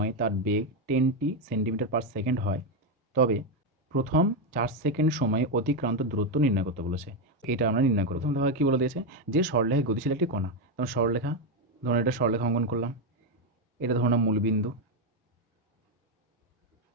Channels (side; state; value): both; normal; correlation 0.06